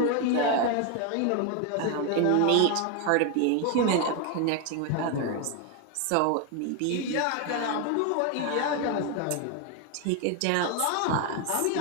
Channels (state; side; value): different; both; correlation 0.01